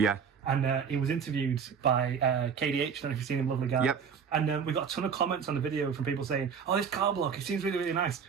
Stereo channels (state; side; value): quieter; left; 6.7 dB